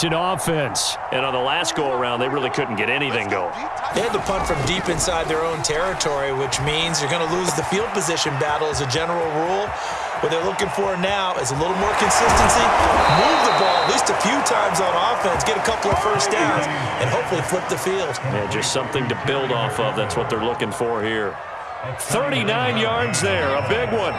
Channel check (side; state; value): both; identical; correlation 1.00